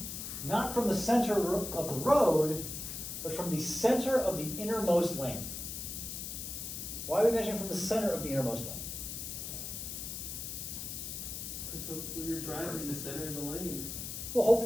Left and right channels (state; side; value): noise; left; hiss, 6 dB below the sound